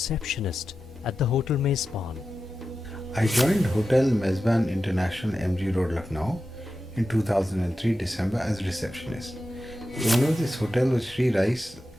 at the Hotel Mezban. I joined Hotel Mezban International, MG Road, Lucknow in 2003 December as receptionist. The owner of this hotel was Sri Rais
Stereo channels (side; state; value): both; normal; correlation 0.92